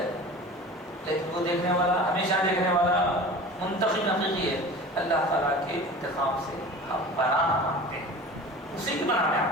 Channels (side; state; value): both; normal; correlation 0.37